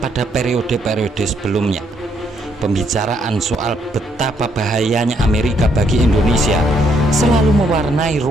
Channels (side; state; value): both; normal; correlation 0.72